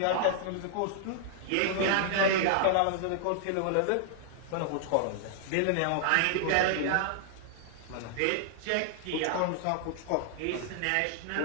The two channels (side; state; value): both; different; correlation 0.00